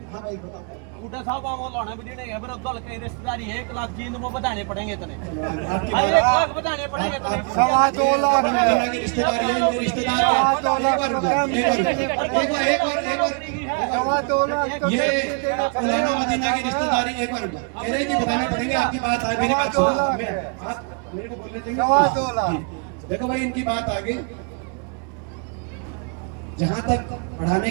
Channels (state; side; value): quieter; left; 35.8 dB